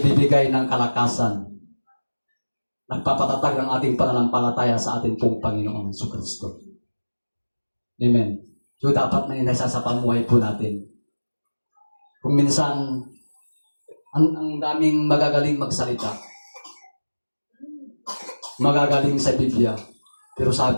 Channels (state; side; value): inverted; both; correlation -1.00